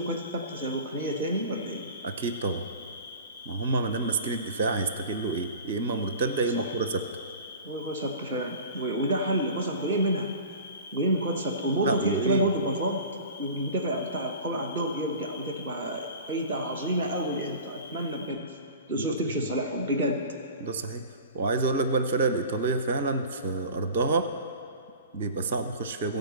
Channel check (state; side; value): inverted; both; correlation -0.39